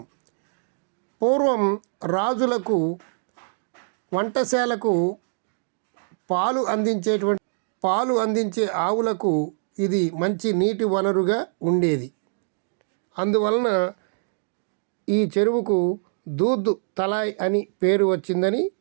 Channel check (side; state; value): left; silent; digital silence